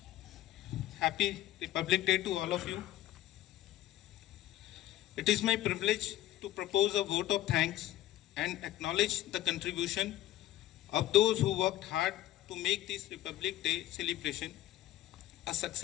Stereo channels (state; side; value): quieter; right; 14.6 dB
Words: Happy Republic Day to all of you. It is my privilege to propose a vote of thanks and acknowledge the contribution of those who worked hard to make this Republic Day celebration a